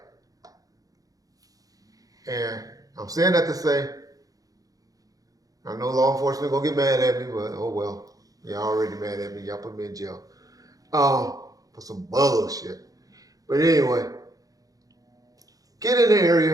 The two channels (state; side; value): late; left; 0.17 ms